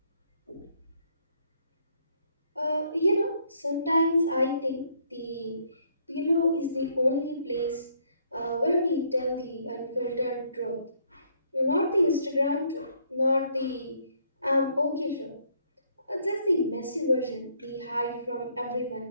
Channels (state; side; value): inverted; both; correlation -0.67